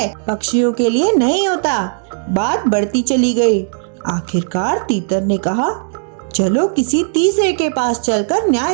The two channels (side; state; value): left; silent; digital silence